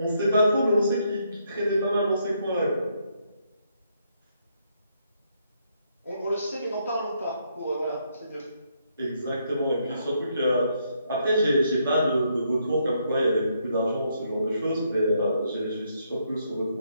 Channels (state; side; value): inverted; both; correlation -0.74